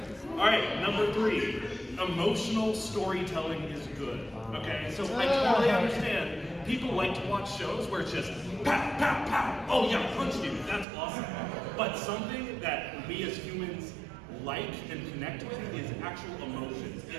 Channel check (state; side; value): drops out; left; at 10.9 s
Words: Alright, number 3. Emotional storytelling is good. Okay, so I totally understand. People like to watch shows where it's just pow, pow, pow. Oh yeah, punch you. That's awesome. But something that we as humans like and connect with is actual emotions.